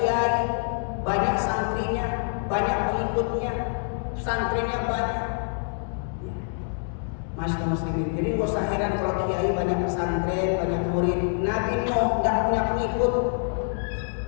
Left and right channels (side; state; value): right; silent; 61 dB below the other